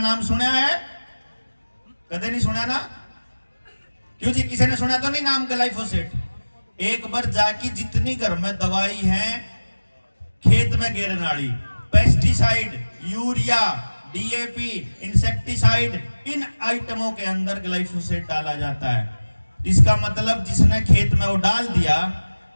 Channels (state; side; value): inverted; both; correlation -1.00